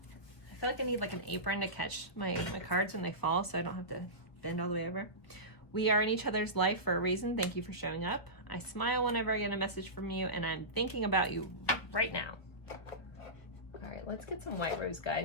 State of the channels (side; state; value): right; late; 1.5 ms